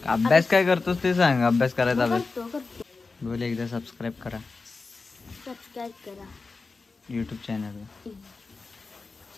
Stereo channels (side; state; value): right; quieter; 4.1 dB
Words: अभ्यास काय करतोस ते सांग. अभ्यास करायचा अभ्यास करतो बोल. एकदा सबस्क्राईब करा सबस्क्राईब करा यूट्यूब चॅनलला.